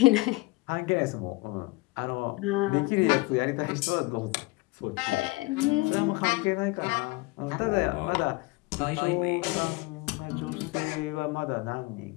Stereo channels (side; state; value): right; quieter; 23.6 dB